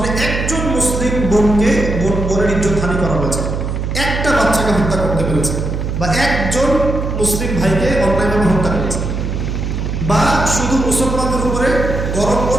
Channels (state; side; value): noise; right; hum, 3 dB below the sound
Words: একজন মুসলিম বোনকে বোনের ইজ্জত হানি করা হয়েছে, একটা বাচ্চাকে হত্যা করতে পেরেছে, বা একজন মুসলিম ভাইকে অন্যায়ভাবে হত্যা করেছে, বা শুধু মুসলমানদের উপরে গরম